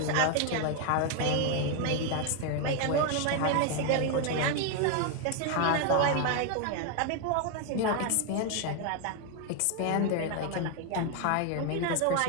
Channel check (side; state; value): both; different; correlation 0.01